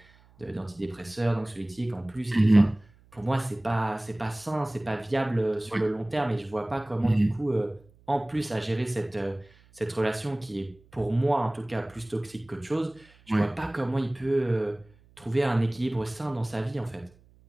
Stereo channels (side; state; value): right; noise; hum, 28 dB below the sound